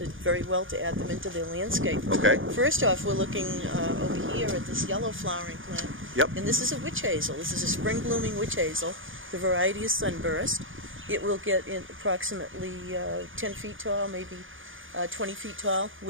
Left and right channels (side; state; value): left; late; 0.58 ms